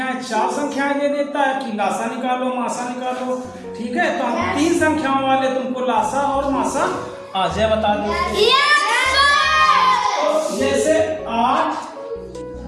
4 संख्याएं दे देता है कि लासा निकालो मासा निकालो। ठीक है। तो हम 3 संख्याओं वाले तुमको लासा और मासा आ जाए बता देते हैं। तो जैसे 8,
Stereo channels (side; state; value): both; identical; correlation 1.00